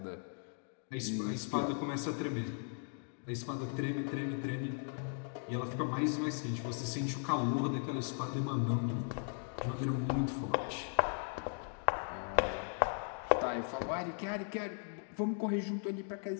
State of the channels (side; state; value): right; silent; 53 dB below the other